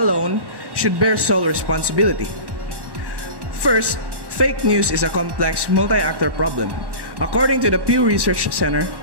should bear sole responsibility. First, fake news is a complex multi-actor problem. According to the Pew Research Center,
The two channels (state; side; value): late; left; 1.1 ms